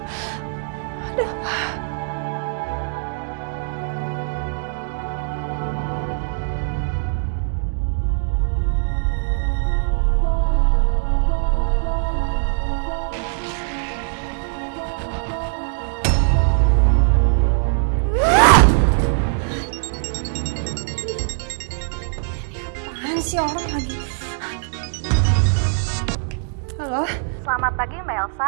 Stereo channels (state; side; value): silent; left; digital silence